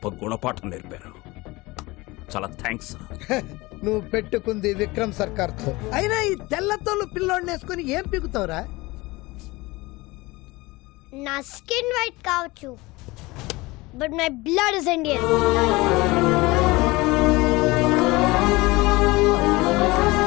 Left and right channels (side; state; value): right; quieter; 22.0 dB